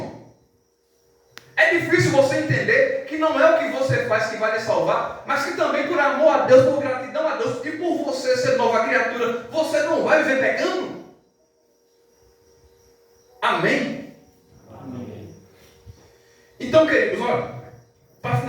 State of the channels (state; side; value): identical; both; correlation 1.00